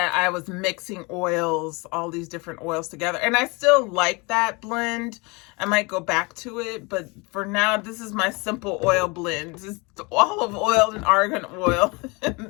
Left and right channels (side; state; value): right; quieter; 27.8 dB